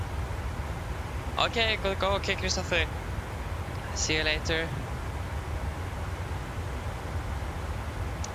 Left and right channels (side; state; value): both; identical; correlation 1.00